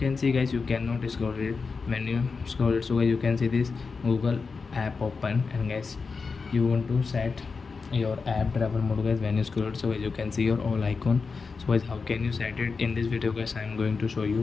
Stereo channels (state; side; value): quieter; right; 4.7 dB